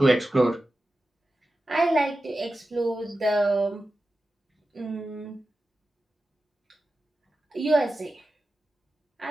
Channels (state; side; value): normal; both; correlation 0.93